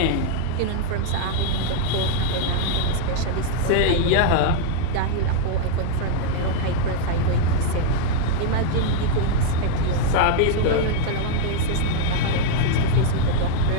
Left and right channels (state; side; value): different; both; correlation 0.00